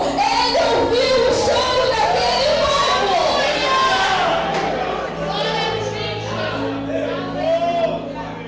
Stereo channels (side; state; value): both; identical; correlation 1.00